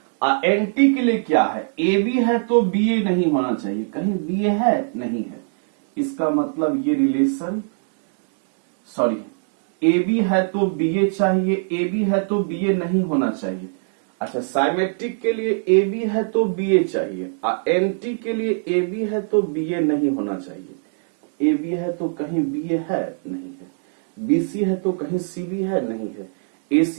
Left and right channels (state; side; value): silent; left; digital silence